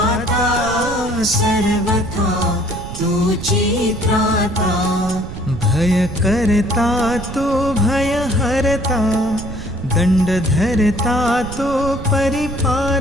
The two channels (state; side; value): noise; right; rumble, 11 dB below the sound